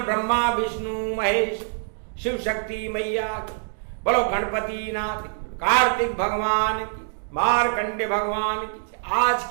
ब्रह्मा विष्णु महेश शिव शक्ति मैया की। बोलो गणपति नाथ, कार्तिक भगवान की, मारकंडे भगवान की, आज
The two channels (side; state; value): left; silent; digital silence